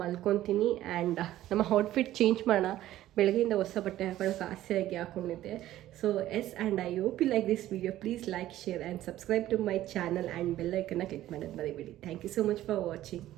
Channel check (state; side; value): quieter; left; 14.0 dB